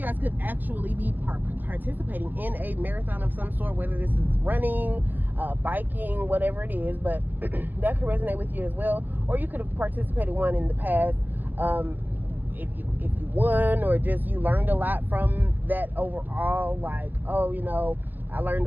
guys could actually be participating in a marathon of some sort, whether this is running, biking, whatever it is, but that could resonate with you as well. Or you could have participated one in the past. If you won, or just you learned a lot from that overall, like, oh, you know, I learned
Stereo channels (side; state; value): left; late; 0.088 ms